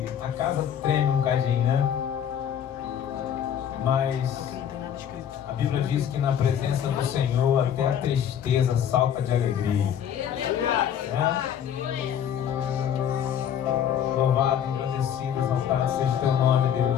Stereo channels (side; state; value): right; quieter; 9.1 dB